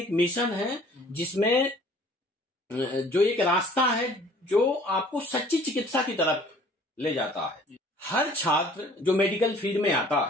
मिशन है, जिसमें जो एक रास्ता है जो आपको सच्ची चिकित्सा की तरफ ले जाता है। हर छात्र जो मेडिकल फील्ड में आता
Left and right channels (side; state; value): both; normal; correlation 0.53